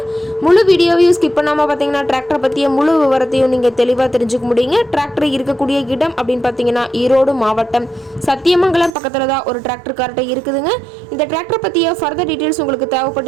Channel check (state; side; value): drops out; left; at 8.9 s